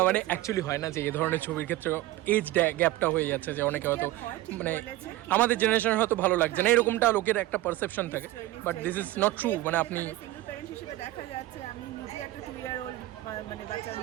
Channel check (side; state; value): left; quieter; 16.5 dB